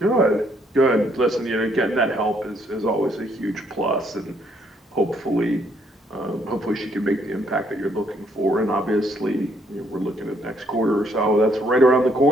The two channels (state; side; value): normal; both; correlation 0.69